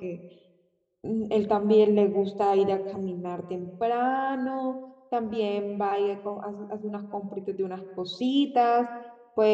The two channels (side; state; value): both; identical; correlation 1.00